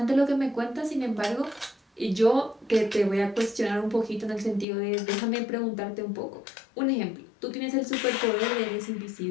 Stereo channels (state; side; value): drops out; right; at 4.7 s